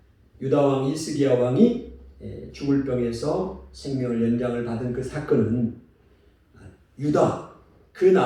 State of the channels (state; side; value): identical; both; correlation 1.00